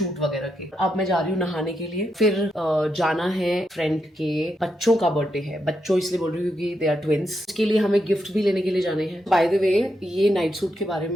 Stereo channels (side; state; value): both; normal; correlation 0.83